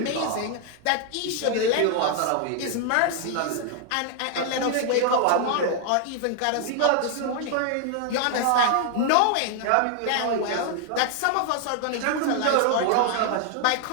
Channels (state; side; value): different; both; correlation 0.00